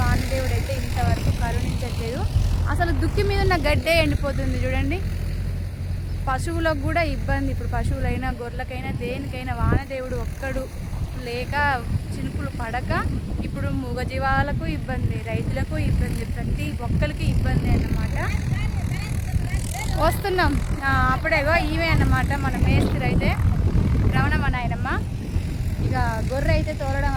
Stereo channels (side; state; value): both; identical; correlation 1.00